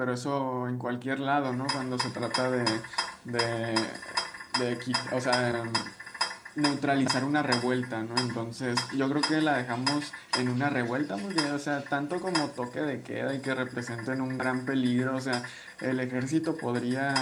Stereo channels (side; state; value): both; identical; correlation 1.00